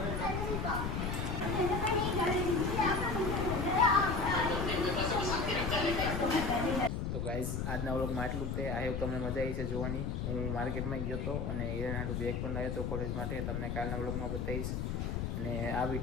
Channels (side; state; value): left; noise; rumble, 1 dB below the sound